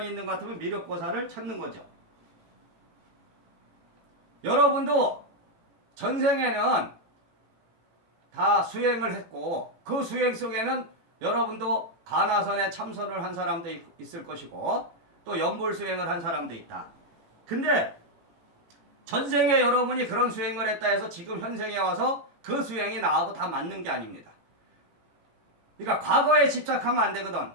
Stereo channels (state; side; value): late; left; 18 ms